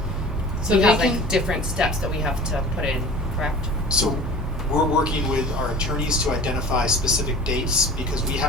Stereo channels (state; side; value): normal; both; correlation 0.40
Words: So we they have can- like different steps that we have to put in, correct? So we're working with our attorneys to identify specific dates because we